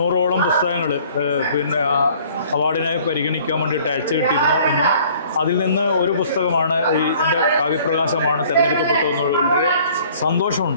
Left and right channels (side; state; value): both; inverted; correlation -0.55